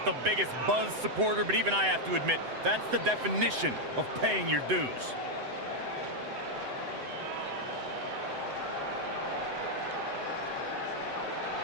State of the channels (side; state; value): left; late; 7.9 ms